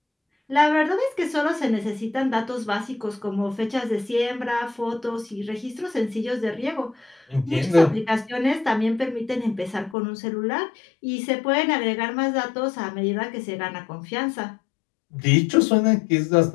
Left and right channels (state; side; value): drops out; right; at 10.0 s